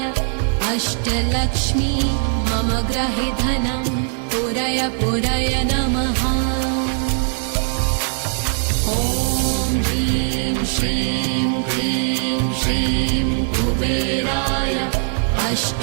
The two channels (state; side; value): silent; left; 66 dB below the other